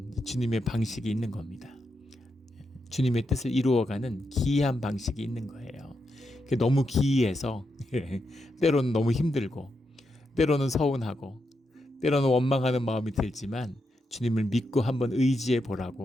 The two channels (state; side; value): normal; both; correlation 0.84